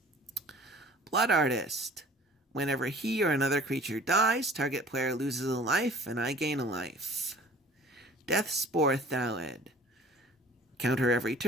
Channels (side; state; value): both; normal; correlation 0.49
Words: Blood Artist. Whenever he or another creature dies, target player loses a life, and I gain a life. Deathspore Thalid. Counter every